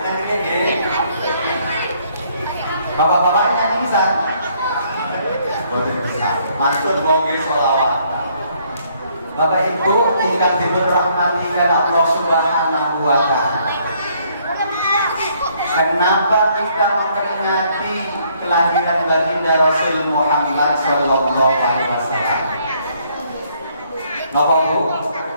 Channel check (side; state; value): both; inverted; correlation -0.67